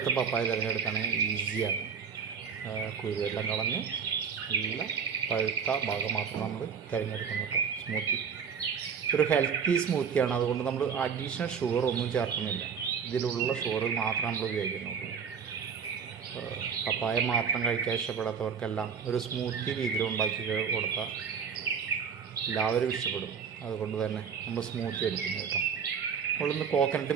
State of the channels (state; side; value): quieter; left; 6.6 dB